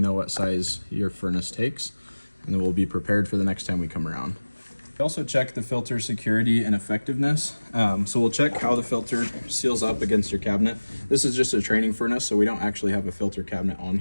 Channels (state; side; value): inverted; both; correlation -1.00